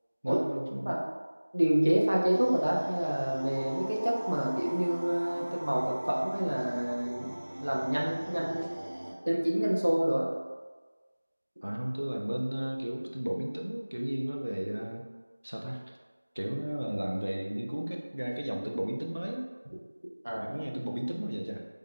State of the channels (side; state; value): both; inverted; correlation -1.00